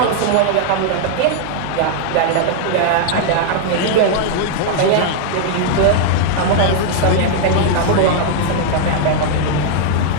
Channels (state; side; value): different; both; correlation 0.00